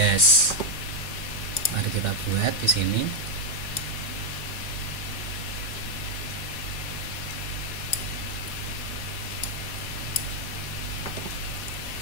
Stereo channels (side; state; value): right; late; 4.2 ms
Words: Mari kita buat di sini.